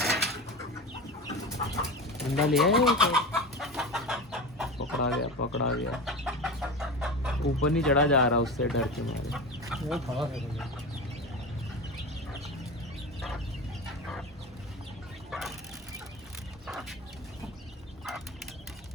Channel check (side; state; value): both; normal; correlation 0.26